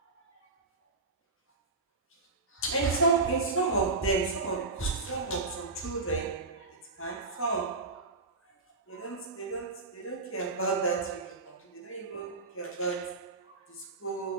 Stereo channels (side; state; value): left; quieter; 3.7 dB